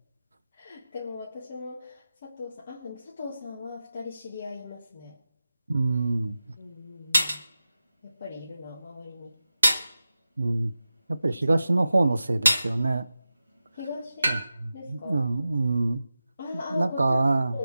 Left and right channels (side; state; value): both; inverted; correlation -0.93